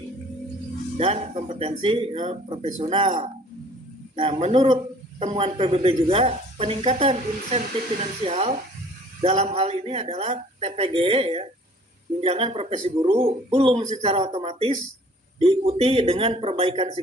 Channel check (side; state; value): both; normal; correlation 0.53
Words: dan kompetensi profesional. Nah, menurut temuan PBB juga peningkatan insentif finansial dalam hal ini adalah TPG ya, tunjangan profesi guru belum secara otomatis diikuti dengan perbaikan